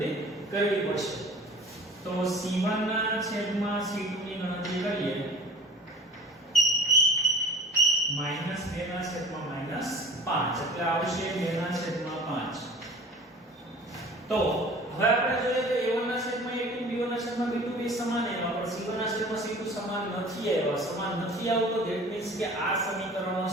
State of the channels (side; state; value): both; normal; correlation 0.42